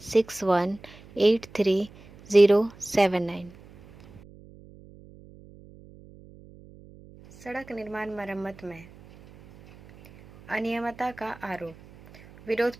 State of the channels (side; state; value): right; noise; hum, 22 dB below the sound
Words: सड़क निर्माण मरम्मत में अनियमितता का आरोप, विरोध